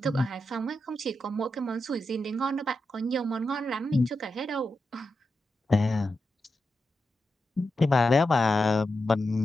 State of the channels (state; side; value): normal; both; correlation 0.88